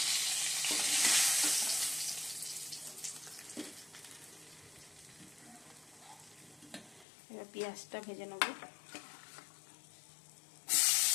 এবার পেঁয়াজটা ভেজে নেব।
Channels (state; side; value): drops out; right; at 7.1 s